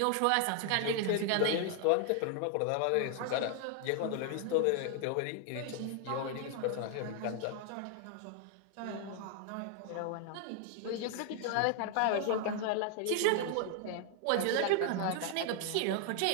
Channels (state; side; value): different; both; correlation 0.00